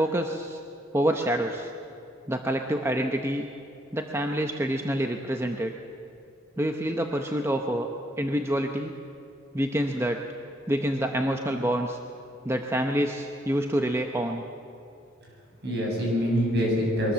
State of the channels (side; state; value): both; normal; correlation 0.72